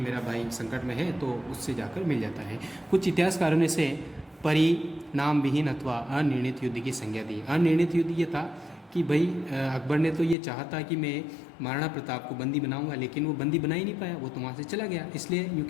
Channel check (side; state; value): right; drops out; at 10.4 s